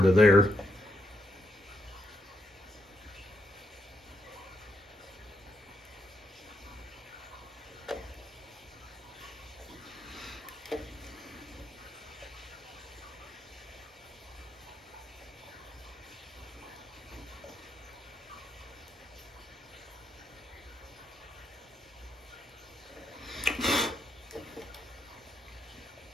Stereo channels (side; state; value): both; normal; correlation 0.80